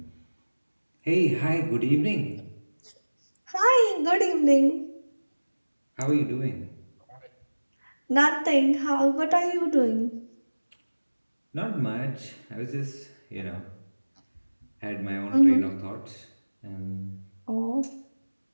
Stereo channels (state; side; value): inverted; both; correlation -1.00